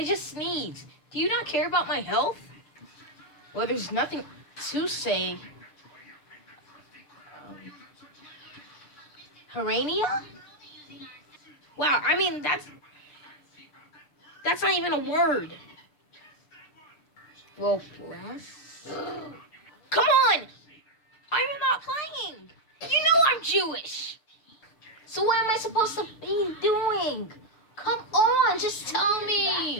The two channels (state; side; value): late; right; 6.7 ms